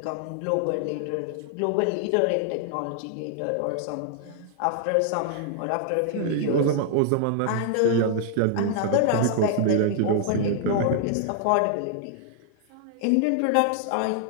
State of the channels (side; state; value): both; different; correlation 0.00